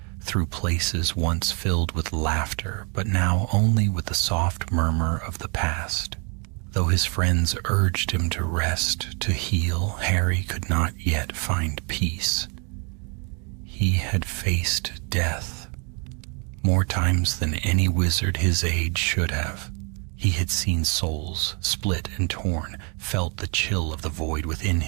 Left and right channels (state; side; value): quieter; left; 35.6 dB